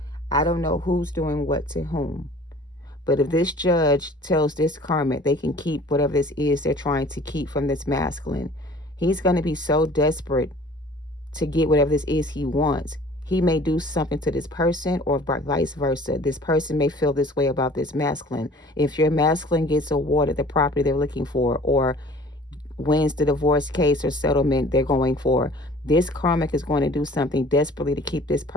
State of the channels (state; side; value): normal; both; correlation 0.49